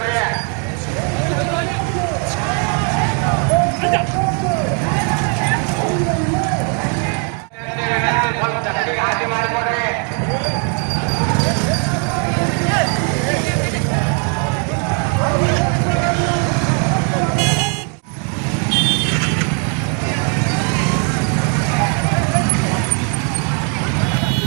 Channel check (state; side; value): quieter; left; 39.5 dB